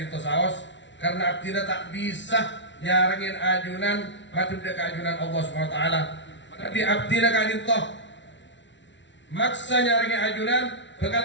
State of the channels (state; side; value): late; right; 0.53 ms